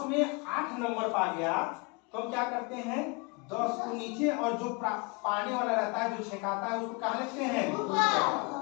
में 8 नंबर पा गया, तो हम क्या करते हैं? 10 को नीचे, और जो पाने वाला रहता है, जो छेकाता है, उसको कहाँ लिखते हैं?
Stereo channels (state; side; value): quieter; right; 30.3 dB